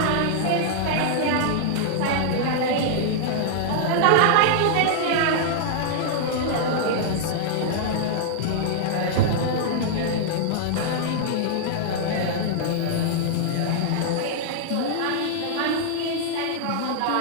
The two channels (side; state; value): both; different; correlation -0.01